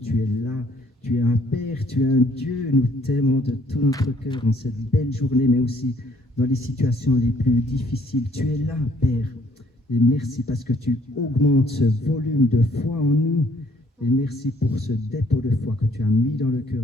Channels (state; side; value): normal; both; correlation 0.63